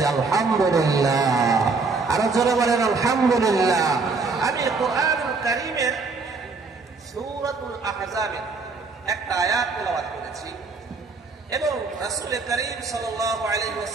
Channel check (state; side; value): quieter; left; 4.2 dB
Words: আলহামদুলিল্লাহ। আরো জোরে বলেন আলহামদুলিল্লাহ। আমি কোরআনুল কারীমের সূরাতুল আহজাবের একটা আয়াত তেলাওয়াত করেছি এবং রাসূল করিম সাল্লাল্লাহু আলাইহি